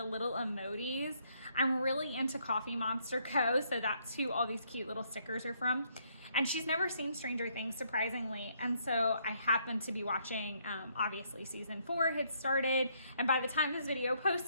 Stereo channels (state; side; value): inverted; both; correlation -0.70